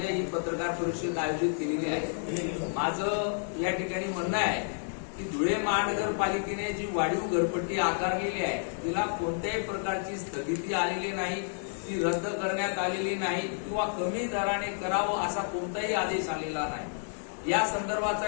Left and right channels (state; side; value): silent; right; digital silence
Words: ही पत्रकार परिषद आयोजित केलेली आहे. माझं या ठिकाणी म्हणणं आहे की धुळे महानगरपालिकेने जी वाढीव घरपट्टी आकारलेली आहे तिला कोणत्याही प्रकारची स्थगिती आलेली नाही, ती रद्द करण्यात आलेली नाही किंवा कमी दराने करावं असा कोणताही आदेश आलेला नाही. या संदर्भाचा